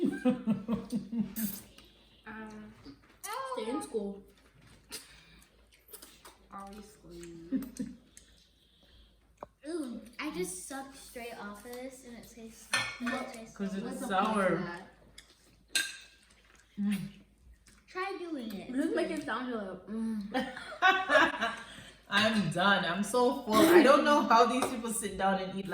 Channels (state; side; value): identical; both; correlation 1.00